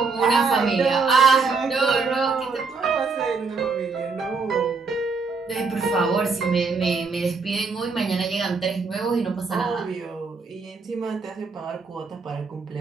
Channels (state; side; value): quieter; left; 4.6 dB